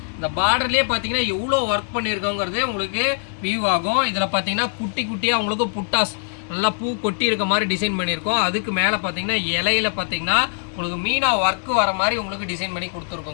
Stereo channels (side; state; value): right; silent; digital silence